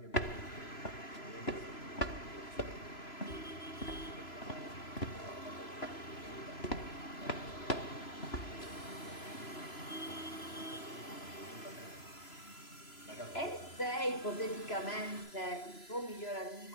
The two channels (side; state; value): right; late; 3.0 ms